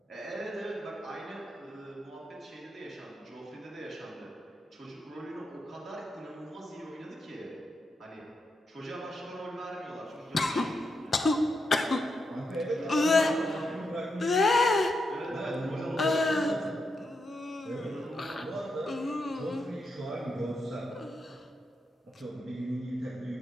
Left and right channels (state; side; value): normal; both; correlation 0.84